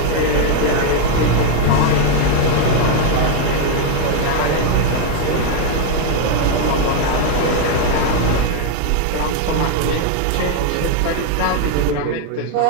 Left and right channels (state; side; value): different; both; correlation 0.00